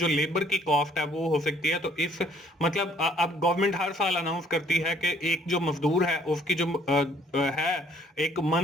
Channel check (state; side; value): normal; both; correlation 0.62